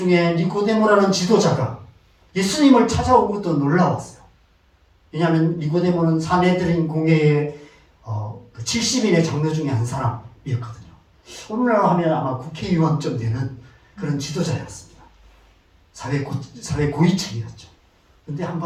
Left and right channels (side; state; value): both; identical; correlation 1.00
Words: 니고데모라는 지도자가 예수님을 찾아온 것도 놀라웠어요. 왜냐하면 니고데모는 사내들인 공회의 그 70인의 장로 중에 한 사람이었거든요. 오늘날 하면 아마 국회의원쯤 되는 그런 지도자였습니다. 사회 고위층이었죠. 근데